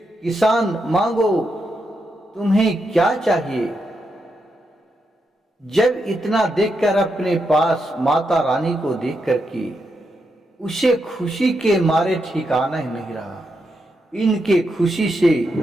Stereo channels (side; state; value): both; normal; correlation 0.83